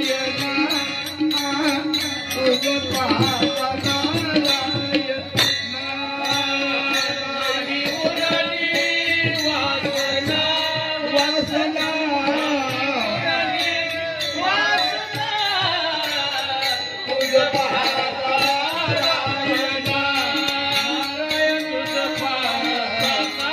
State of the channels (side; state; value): both; identical; correlation 1.00